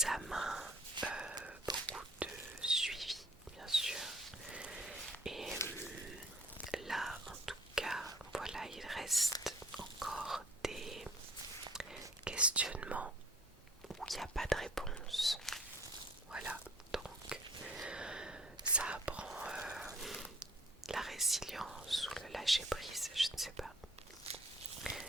beaucoup de suivi bien sûr. Et là en tout cas, voilà, il reste encore des questionnements où il n'y a pas de réponse. Voilà, donc ça apprend la résilience ou le lâcher prise, je ne sais pas,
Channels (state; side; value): normal; both; correlation 0.54